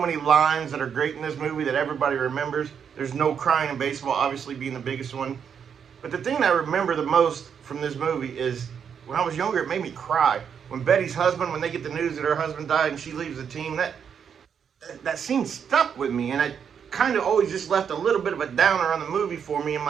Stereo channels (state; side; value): quieter; left; 7.4 dB